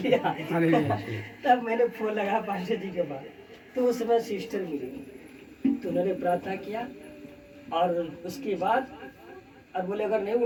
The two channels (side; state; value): both; identical; correlation 1.00